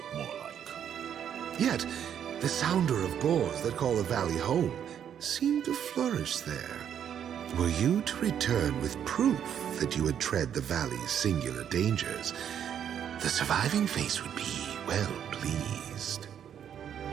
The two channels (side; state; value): left; quieter; 9.1 dB